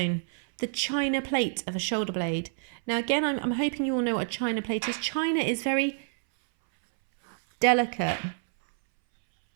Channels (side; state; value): left; silent; 60 dB below the other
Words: The china plate of a shoulder blade. Now again, I'm hoping you all know what a china plate is. China is very delicate.